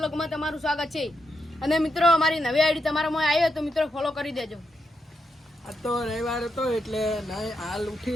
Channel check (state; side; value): normal; both; correlation 0.83